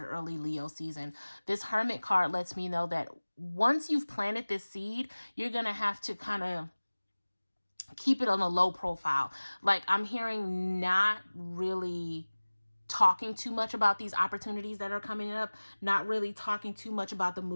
early Leo season. This Hermit card lets me know that once you've planted this seed, you're going to have to kind of keep it on a low profile. Like, I'm hearing not really talking too much about these opportunities that are coming up, not really talking too much about the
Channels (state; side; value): inverted; both; correlation -1.00